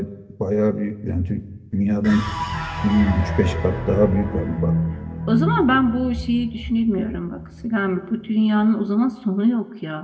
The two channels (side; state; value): both; identical; correlation 1.00